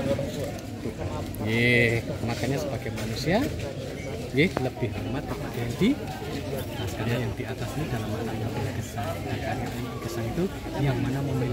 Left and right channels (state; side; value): identical; both; correlation 1.00